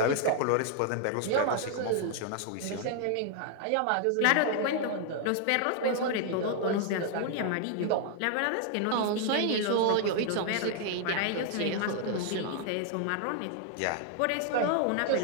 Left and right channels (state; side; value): different; both; correlation 0.00